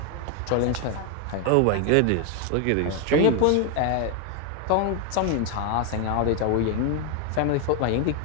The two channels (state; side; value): different; both; correlation 0.01